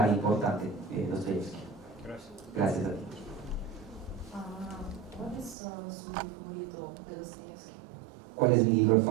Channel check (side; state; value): left; drops out; at 5.6 s